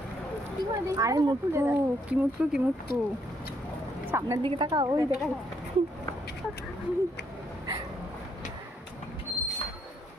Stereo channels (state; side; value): normal; both; correlation 0.73